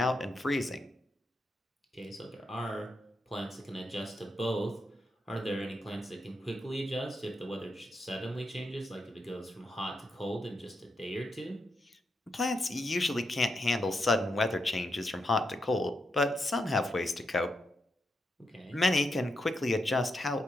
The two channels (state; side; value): normal; both; correlation 0.83